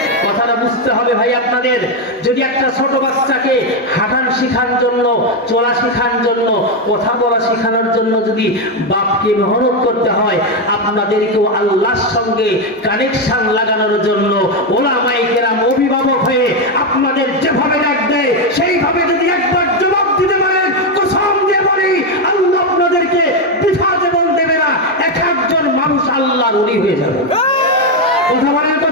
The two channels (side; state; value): both; normal; correlation 0.06